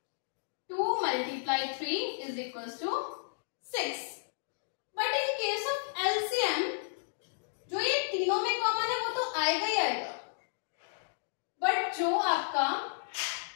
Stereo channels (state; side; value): silent; right; digital silence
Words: 2 multiply 3 is equals to 6. But in case of LCM जो ये तीनों में common है वो तो आएगा ही आएगा, बट जो आपका